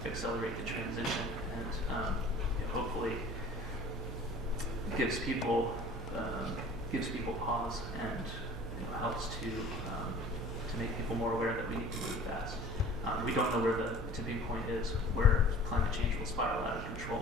accelerate the transition and hopefully gives people pause and helps to make people more aware that we need to move fast. We don't know where the tipping point is, where climate change will spiral out of control,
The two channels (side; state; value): both; normal; correlation 0.45